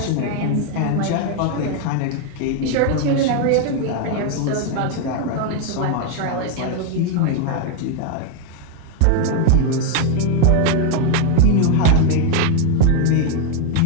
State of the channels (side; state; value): both; different; correlation 0.01